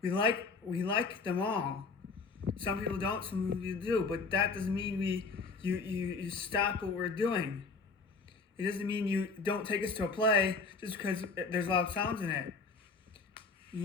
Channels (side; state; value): right; quieter; 4.4 dB